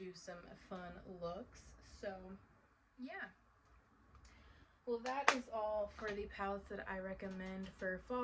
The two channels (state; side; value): identical; both; correlation 1.00